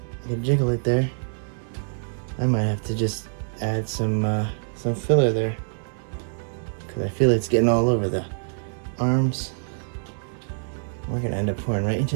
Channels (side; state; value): left; silent; 62 dB below the other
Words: You can jiggle it there. I might have to just add some filler there, because I feel it's getting all over the arms. We're gonna end up pouring right